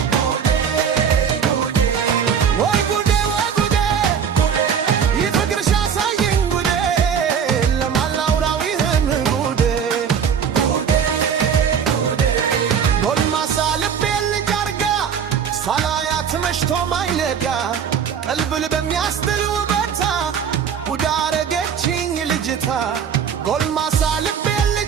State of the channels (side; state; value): left; quieter; 7.4 dB